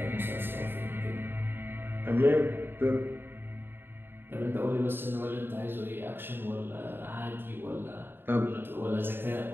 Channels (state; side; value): late; left; 0.10 ms